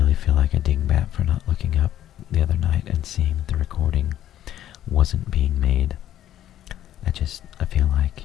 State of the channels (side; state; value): right; quieter; 11.9 dB